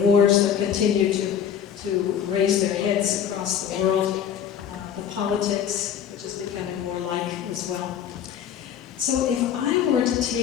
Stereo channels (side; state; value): right; quieter; 8.7 dB